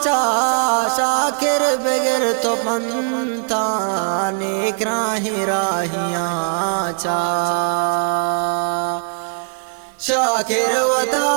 چا شاکر بغیر تو پنتا نیک راہی راہیاں چا شاکر و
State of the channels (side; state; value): left; silent; 66 dB below the other